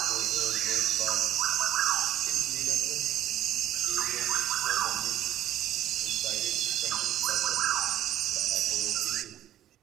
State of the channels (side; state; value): left; quieter; 12.3 dB